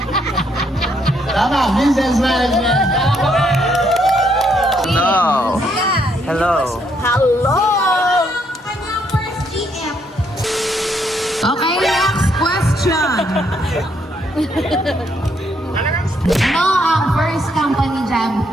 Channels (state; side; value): normal; both; correlation 0.72